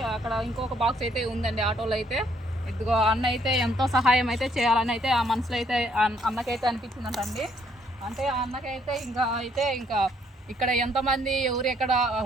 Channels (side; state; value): both; normal; correlation 0.68